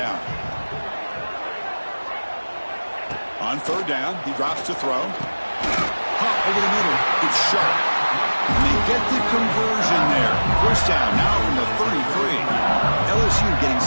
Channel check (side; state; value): both; inverted; correlation -1.00